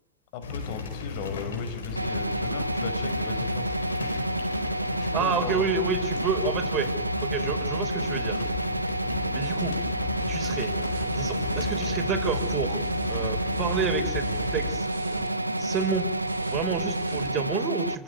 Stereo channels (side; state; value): both; inverted; correlation -0.43